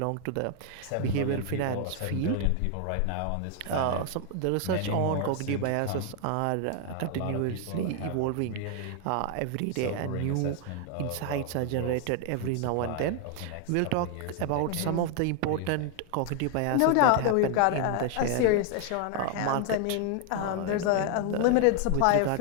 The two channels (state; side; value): different; both; correlation 0.00